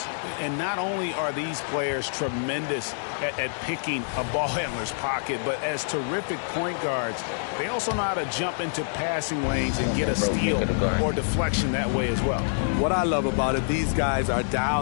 And not only are these players tremendous at picking a ball handler's pocket, but as terrific point guards, they also know how to jump into passing lanes and get a steal or deflection that way as well. What I love about it, these guys are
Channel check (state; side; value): silent; right; digital silence